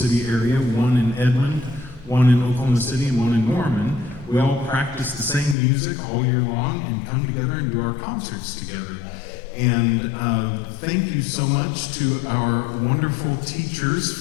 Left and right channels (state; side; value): drops out; right; at 5.6 s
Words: area, one in Edmond, one in Oklahoma City, and one in Norman. We all practice the same music all year long and come together and do our concerts together. And thank you so much to our wonderful teachers